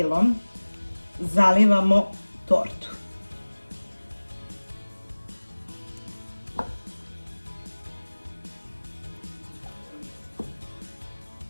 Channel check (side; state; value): both; inverted; correlation -1.00